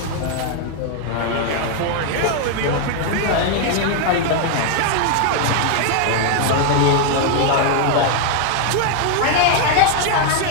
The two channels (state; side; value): different; both; correlation 0.00